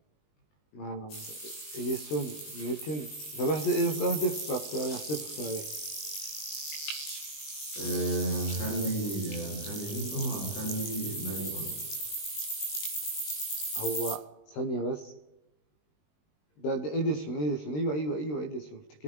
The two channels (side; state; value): right; late; 20 ms